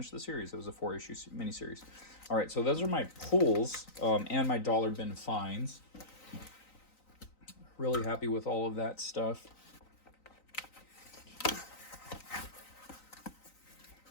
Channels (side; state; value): right; late; 3.9 ms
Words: the series. It was a 4-issue miniseries. All right, so those are my pulls and my dollar bin finds. Really happy with all of that stuff.